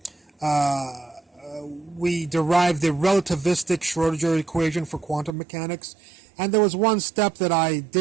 "We Derived the Relativistic Schrodinger Equation for Quantum Mechanics," and there was one step that I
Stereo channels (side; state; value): left; drops out; at 5.3 s